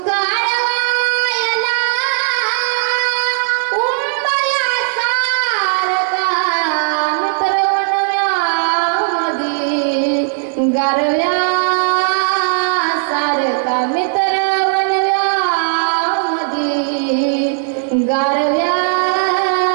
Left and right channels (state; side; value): silent; left; digital silence